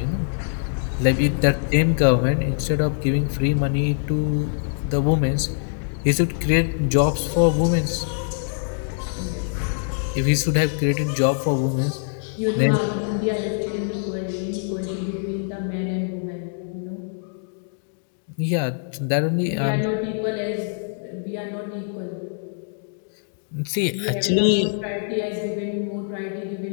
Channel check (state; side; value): silent; right; digital silence